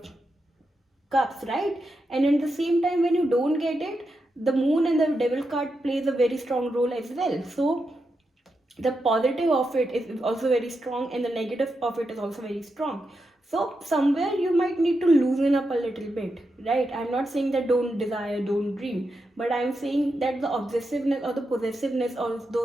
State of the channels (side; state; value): both; normal; correlation 0.86